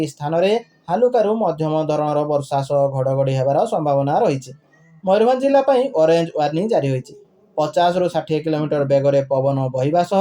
स्थान में हालुकारु मध्यम धरणर वर्षा सह घड़घड़ी हेबार संभावना रही। मयूरभंज जिला ऑरेंज वार्निंग जारी होइछि। 50 ରୁ 60 किलोमीटर बेगरे पवन बहिबा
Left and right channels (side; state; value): both; identical; correlation 1.00